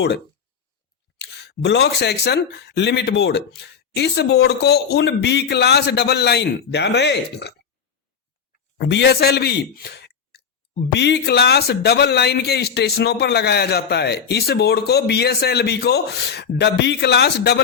block section limit board, इस बोर्ड को उन बी क्लास डबल लाइन, ध्यान रहे, बीएसएलबी बी क्लास डबल लाइन के स्टेशनों पर लगाया जाता है। इस बोर्ड को, बीएसएलबी को बी क्लास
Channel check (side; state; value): right; quieter; 6.7 dB